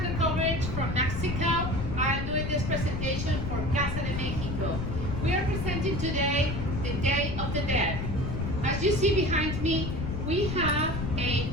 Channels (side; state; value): left; noise; rumble, 3 dB below the sound